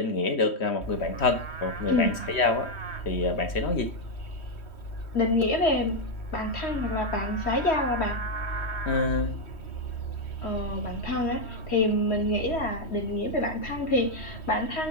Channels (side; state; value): right; late; 3.1 ms